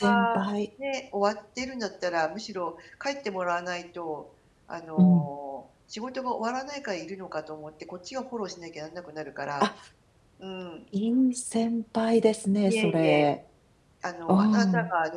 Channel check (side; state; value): both; identical; correlation 1.00